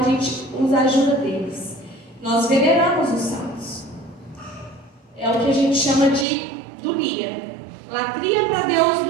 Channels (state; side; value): drops out; left; at 6.2 s